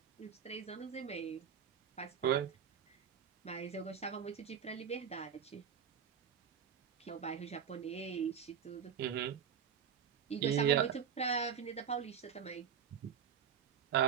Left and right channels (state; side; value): quieter; left; 7.9 dB